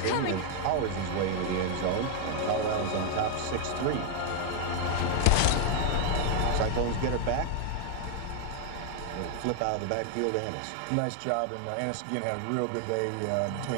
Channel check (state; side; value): different; both; correlation 0.00